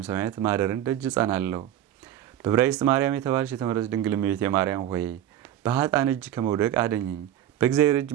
ሰማያት ማደርን ደጅ ጸናለሁ። በዕብራይስጥ ማርያም የተባልሽ የተመረጥሽ ድንግል እመቤቴ ማርያም ሆይ በኃጥአን እጅ ከመውደቅ አድኝኝ። በእግዚአብሔር እጅ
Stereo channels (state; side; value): quieter; left; 11.6 dB